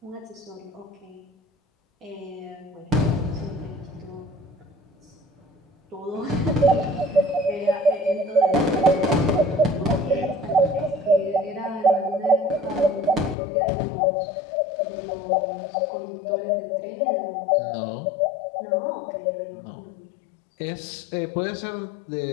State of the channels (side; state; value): right; drops out; at 13.4 s